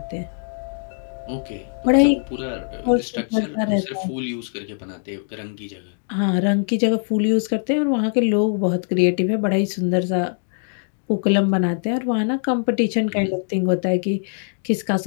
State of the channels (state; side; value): silent; right; digital silence